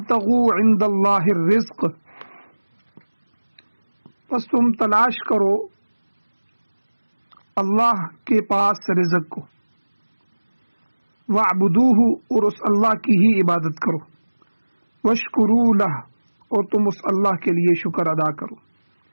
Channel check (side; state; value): both; inverted; correlation -1.00